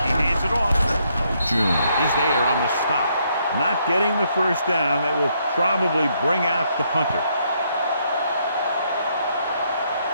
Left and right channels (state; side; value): inverted; both; correlation -0.73